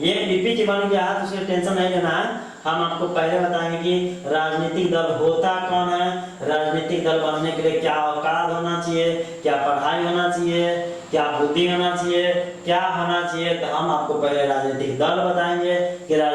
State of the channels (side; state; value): both; identical; correlation 1.00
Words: पीपीटी बन गया है तो उसमें टेंशन नहीं लेना है। हम आपको पहले बताएंगे कि राजनीतिक दल होता कौन है, राजनीतिक दल बनने के लिए क्या औकात होना चाहिए, क्या पढ़ाई होना चाहिए, क्या बुद्धि होना चाहिए, क्या होना चाहिए। तो हम आपको पहले राजनीतिक दल बताएंगे कि